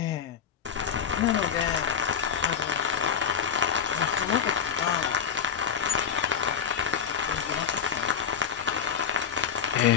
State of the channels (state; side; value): quieter; right; 7.4 dB